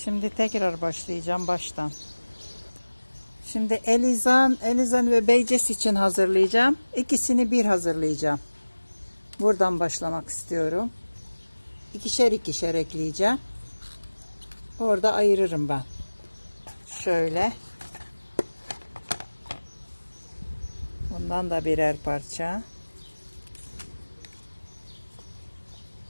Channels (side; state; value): both; inverted; correlation -1.00